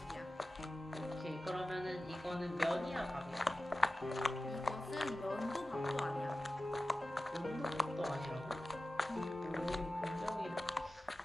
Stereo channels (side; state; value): both; normal; correlation 0.95